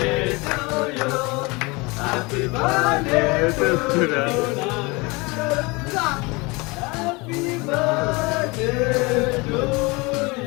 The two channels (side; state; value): right; quieter; 25.9 dB